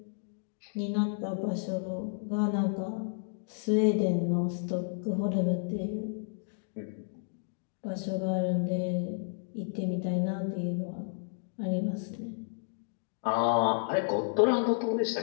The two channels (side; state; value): right; silent; digital silence